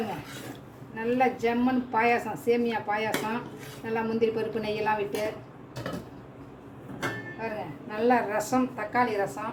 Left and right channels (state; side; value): identical; both; correlation 1.00